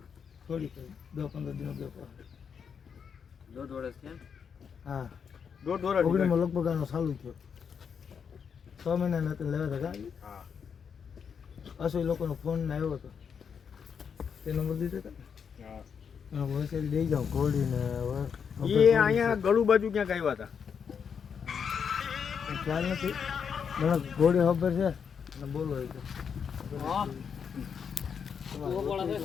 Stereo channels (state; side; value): quieter; right; 6.8 dB